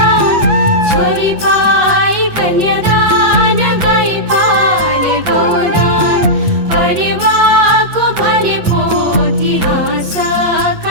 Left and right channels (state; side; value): late; left; 8.2 ms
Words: छोरी पाई कन्यादान गई पाले गौदान परिवारको भने पोथी